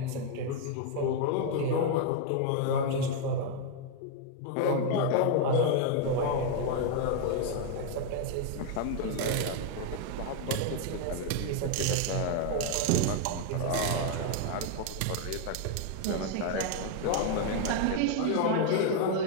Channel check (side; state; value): both; different; correlation 0.00